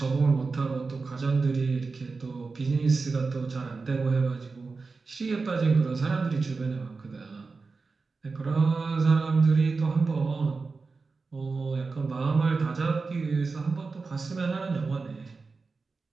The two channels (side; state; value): left; quieter; 4.2 dB